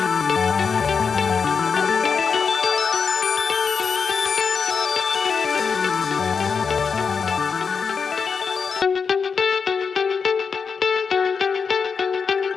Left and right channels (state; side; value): quieter; right; 5.7 dB